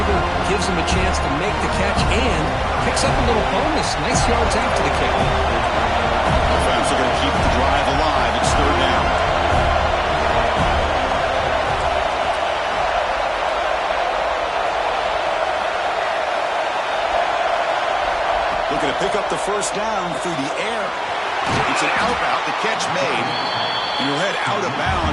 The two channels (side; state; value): both; identical; correlation 1.00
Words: gives him a chance to make the catch, and picks up a little bonus. Nice yards after the kick. Offense are going to keep the drive alive. It's third down. Looking to pick up the first down through the air. It's an out-out, the catch made. And you'll head out of